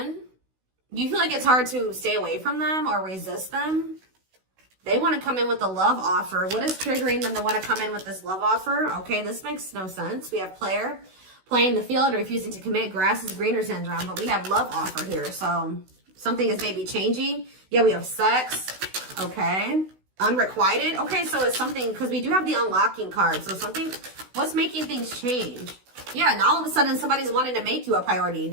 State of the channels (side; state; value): left; late; 16 ms